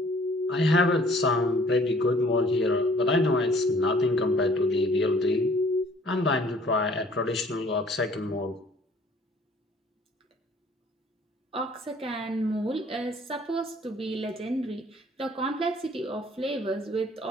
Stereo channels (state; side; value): normal; both; correlation 0.56